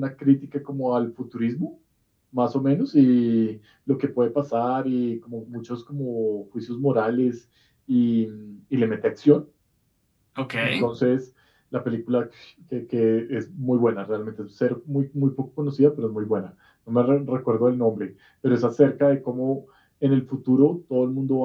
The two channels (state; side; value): identical; both; correlation 1.00